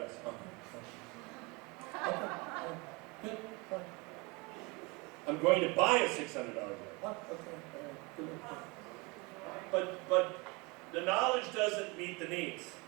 Okay. Good. I'm going to buy a $600 dress. But the knowledge doesn't meet the needs.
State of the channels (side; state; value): left; quieter; 27.1 dB